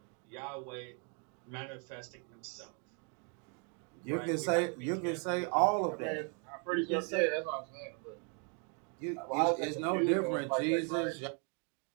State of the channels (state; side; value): quieter; left; 38.4 dB